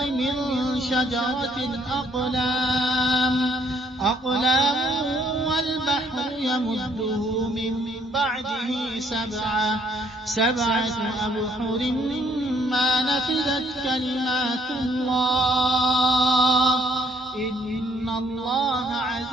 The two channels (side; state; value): both; normal; correlation 0.65